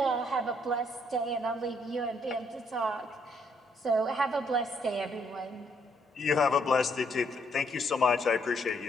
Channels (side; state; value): both; normal; correlation 0.70